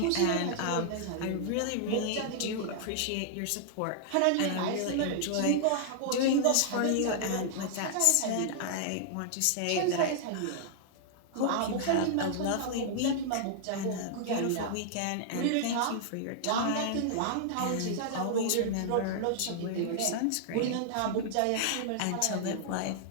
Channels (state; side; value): different; both; correlation -0.01